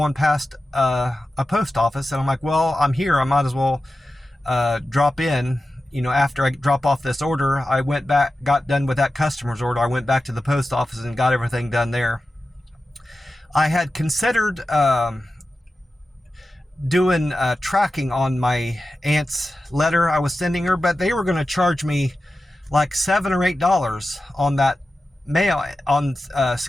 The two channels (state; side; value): normal; both; correlation 0.93